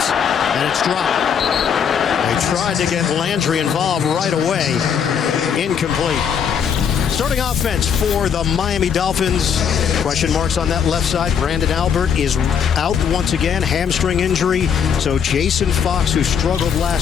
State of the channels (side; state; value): right; quieter; 7.5 dB